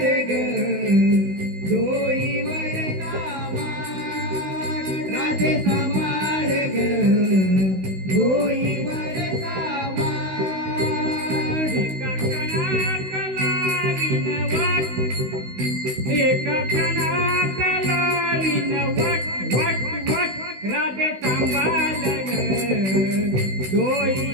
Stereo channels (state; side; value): late; left; 16 ms